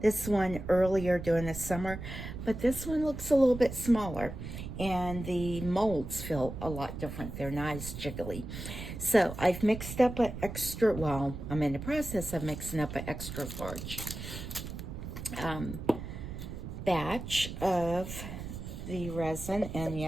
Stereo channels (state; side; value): noise; right; rumble, 8 dB below the sound